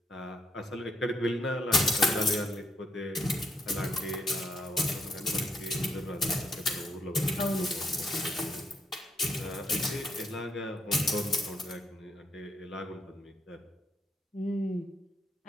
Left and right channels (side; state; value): both; normal; correlation 0.76